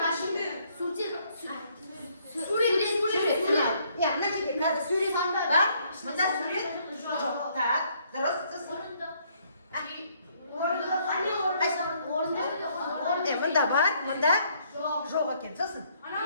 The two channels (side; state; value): both; inverted; correlation -0.67